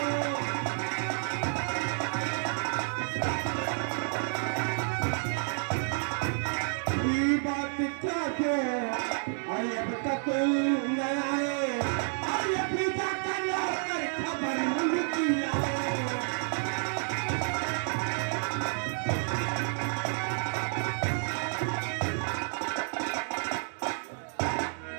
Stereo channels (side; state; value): left; silent; 58 dB below the other